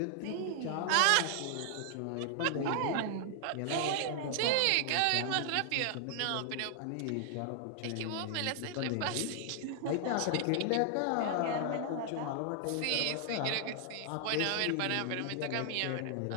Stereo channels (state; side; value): different; both; correlation 0.00